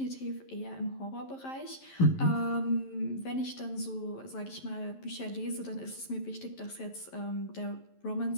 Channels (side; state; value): right; late; 11 ms